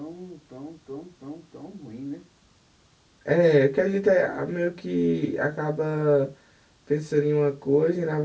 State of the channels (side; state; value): both; identical; correlation 1.00